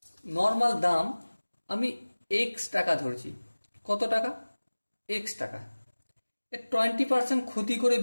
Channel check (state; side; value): inverted; both; correlation -1.00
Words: নর্মাল দাম আমি এক্স টাকা ধরছি। কত টাকা? এক্স টাকা। এ 20% ক্ষতি করে